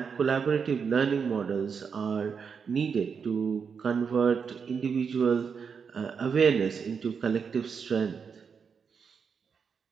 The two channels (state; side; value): quieter; left; 6.2 dB